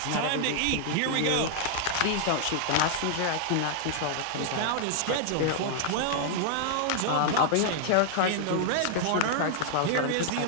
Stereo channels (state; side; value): different; both; correlation -0.01